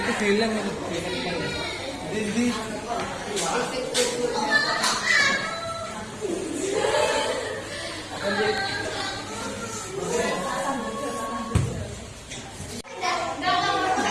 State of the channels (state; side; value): identical; both; correlation 1.00